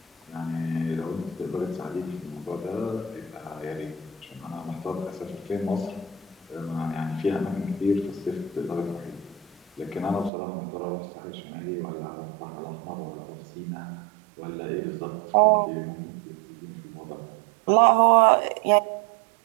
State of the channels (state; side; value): drops out; left; at 10.3 s